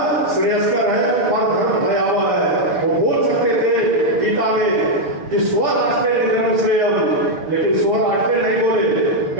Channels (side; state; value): left; late; 6.9 ms